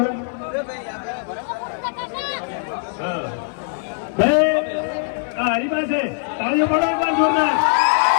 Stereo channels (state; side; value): silent; right; 59 dB below the other